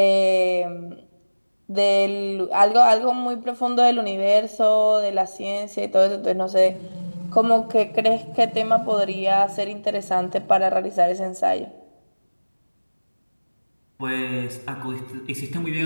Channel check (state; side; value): inverted; both; correlation -1.00